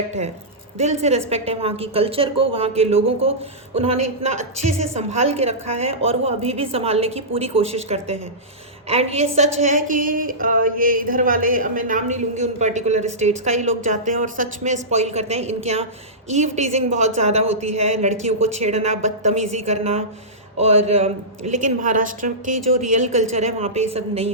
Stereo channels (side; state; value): both; normal; correlation -0.17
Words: है, दिल से रेस्पेक्ट है वहाँ की कल्चर को, वहाँ के लोगों को। उन्होंने इतना अच्छे से संभाल के रखा है और वो अभी भी संभालने की पूरी कोशिश करते हैं। एंड ये सच है कि ये इधर वाले, मैं नाम नहीं लूँगी उन पर्टिकुलर स्टेट्स का, ही लोग जाते हैं और सच में स्पॉइल करते हैं। इनके यहाँ ईव टीजिंग बहुत ज़्यादा होती है, लड़कियों को छेड़ना, बदतमीज़ी करना। और लेकिन महाराष्ट्र की जो रियल कल्चर है वहाँ पे ये सब